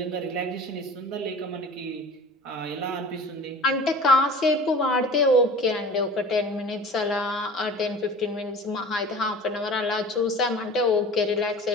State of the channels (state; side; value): normal; both; correlation 0.40